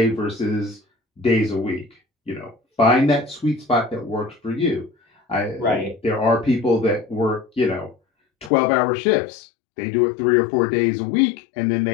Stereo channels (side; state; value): right; drops out; at 8.5 s